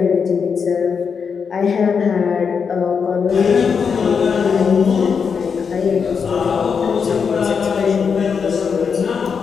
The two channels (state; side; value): quieter; right; 6.1 dB